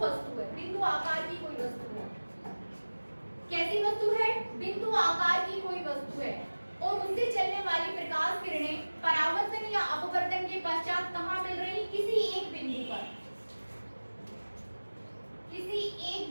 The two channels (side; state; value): both; inverted; correlation -1.00